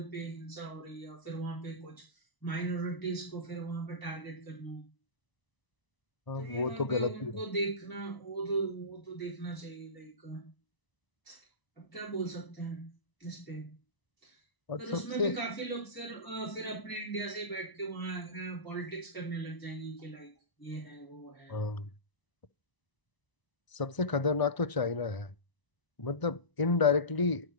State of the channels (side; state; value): right; late; 1.0 ms